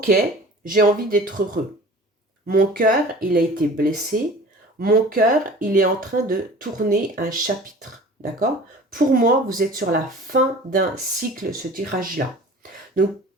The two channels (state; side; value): normal; both; correlation 0.43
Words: j'ai envie d'être heureux. Mon cœur, il a été blessé. Mon cœur, il est en train de tourner un chapitre. D'accord? Pour moi, vous êtes sur la fin d'un cycle, ce tirage-là. Donc,